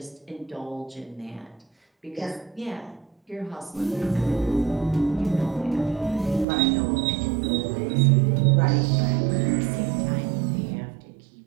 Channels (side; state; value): left; drops out; at 6.5 s